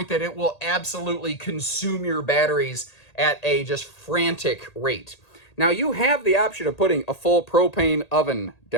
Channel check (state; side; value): late; right; 1.8 ms